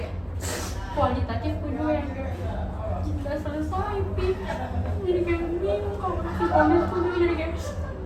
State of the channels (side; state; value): both; identical; correlation 1.00